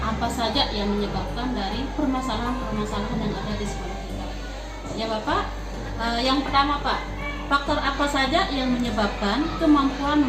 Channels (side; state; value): both; identical; correlation 1.00